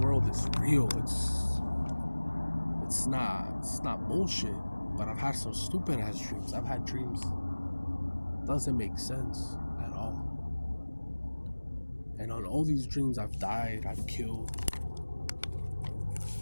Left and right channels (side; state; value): both; inverted; correlation -1.00